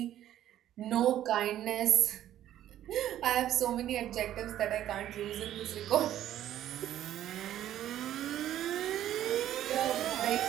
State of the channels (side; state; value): left; quieter; 12.0 dB